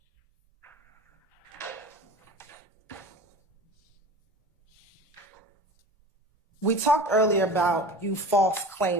We talked earlier about you false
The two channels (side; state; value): both; normal; correlation 0.36